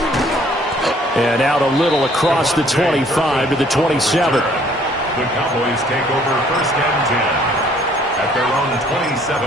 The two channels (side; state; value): both; normal; correlation 0.60